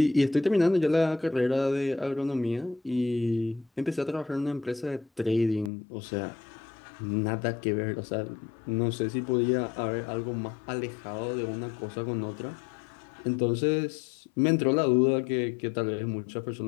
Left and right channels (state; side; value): drops out; right; at 5.7 s